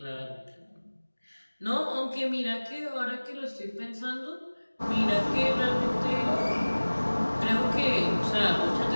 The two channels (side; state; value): both; inverted; correlation -1.00